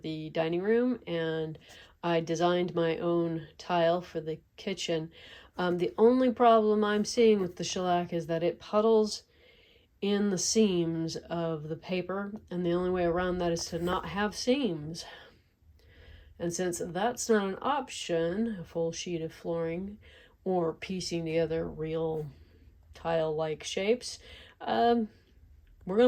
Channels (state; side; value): identical; both; correlation 1.00